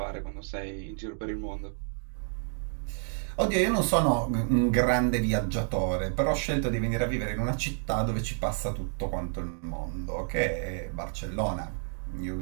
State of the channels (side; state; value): left; silent; 58 dB below the other